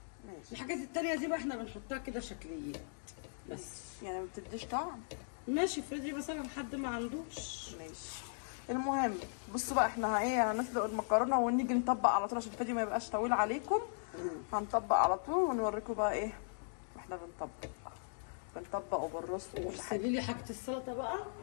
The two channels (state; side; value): silent; right; digital silence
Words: ماشي، الحاجات التانية دي بقى احنا بنحطها كده شكليات بس. يعني ما بتديش طعم. ماشي، افرضي مثلا حد ما عندوش. ماشي، المهم بصوا بقى احنا ايه هنسلق المكرونه ونيجي نطبق على طول عشان الفيديو ما يبقاش طويل عليكم. هنطبق على طول ونوريكم بقى ايه واحنا بنطبق وبالرص وكل حاجه. سيبي لي حاجه السلطه بقى.